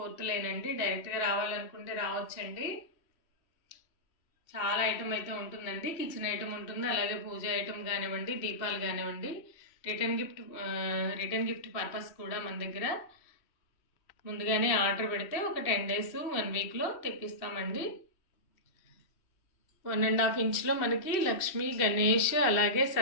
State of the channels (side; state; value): right; late; 3.1 ms